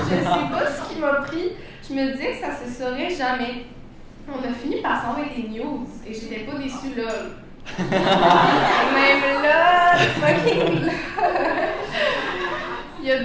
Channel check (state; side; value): identical; both; correlation 1.00